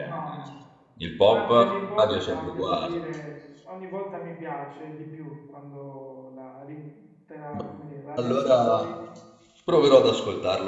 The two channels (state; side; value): identical; both; correlation 1.00